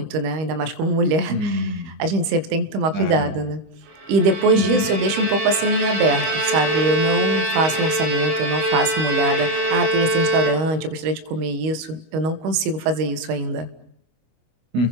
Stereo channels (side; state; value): left; late; 25 ms